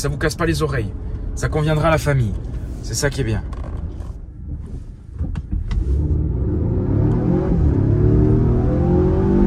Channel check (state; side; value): identical; both; correlation 1.00